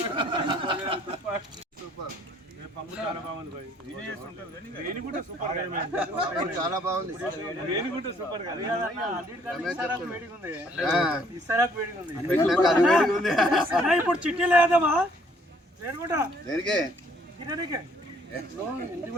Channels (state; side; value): normal; both; correlation 0.63